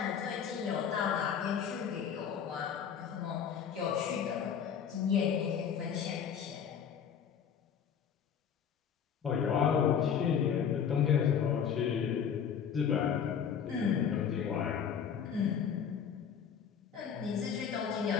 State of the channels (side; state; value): right; quieter; 7.7 dB